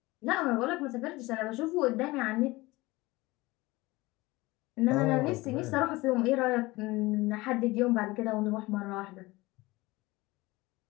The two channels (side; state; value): right; quieter; 21.0 dB